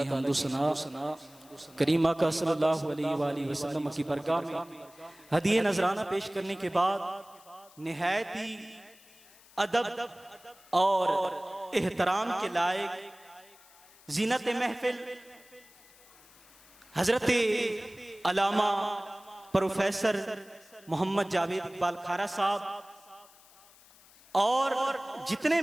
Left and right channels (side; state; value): left; noise; hiss, 25 dB below the sound